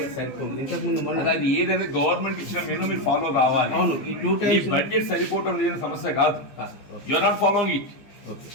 సరిపోదు. ఇంతకుముందు మనం అది ఏదైనా గవర్నమెంట్ ఇచ్చిన మెనూ మీరు ఫాలో కావాలి. అవును, ఈ 2 టైమ్స్ బడ్జెట్ సరిపోవటం లేని సమస్య కాదు. You are not following it. Okay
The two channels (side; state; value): right; late; 15 ms